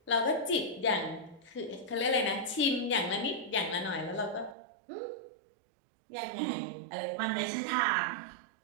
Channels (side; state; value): left; drops out; at 4.5 s